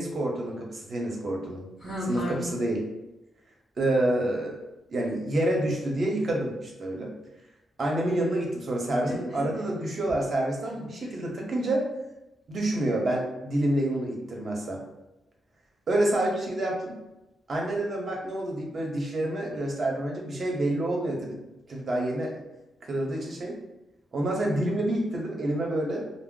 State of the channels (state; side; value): normal; both; correlation 0.84